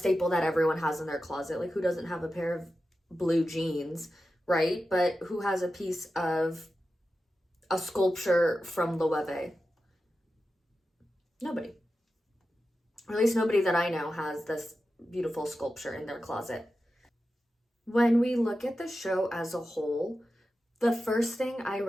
that everyone has in their closet. Like, who doesn't have a pair of blue jeans, right? But who has a piece of a sculpture from Loewe? Nobody. Or at least nobody that I know has this beautiful sculpture in their closet. When we look at the show as a whole, the first thing I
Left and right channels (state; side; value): normal; both; correlation 0.92